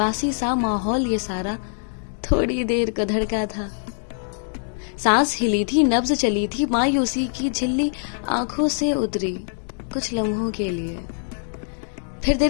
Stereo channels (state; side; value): silent; right; digital silence